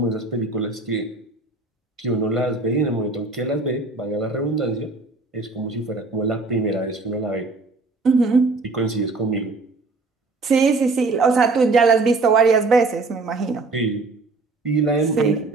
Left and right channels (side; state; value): left; quieter; 3.6 dB